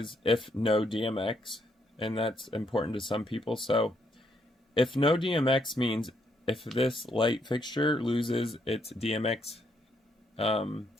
if no DMX, and that's important to some people. So if no DMX means if this light fixture loses its DMX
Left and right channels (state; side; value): normal; both; correlation 0.74